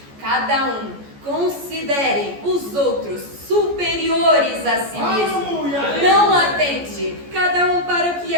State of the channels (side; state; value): left; late; 14 ms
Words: cada um considere os outros superiores a si mesmo. Não atente cada um para o que